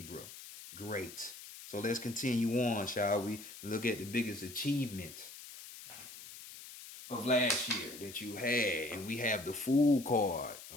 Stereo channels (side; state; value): left; noise; hiss, 14 dB below the sound